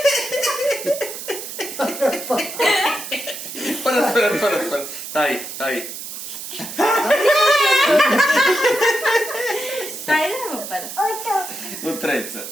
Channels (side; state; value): right; noise; hiss, 9 dB below the sound